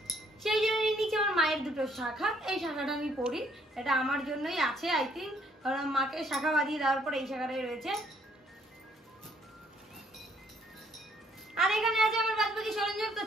সেই জন্য নিচে আমার মায়ের দুটো শাখা, এই শাখাটা আমি পরি, এটা আমার জন্যই আছে আই থিঙ্ক, কারণ মাকে শাখা বাঁধিয়ে দেওয়ার পর এই শাখাটাই রয়েছে। আর এখানে আছে আমার বাদ বাকি সরঞ্জাম। তো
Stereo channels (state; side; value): normal; both; correlation 0.66